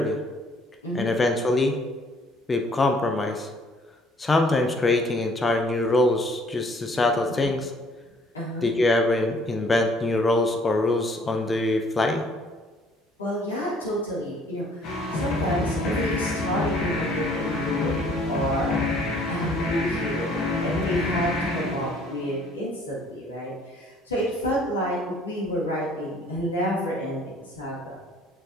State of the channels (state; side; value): normal; both; correlation 0.59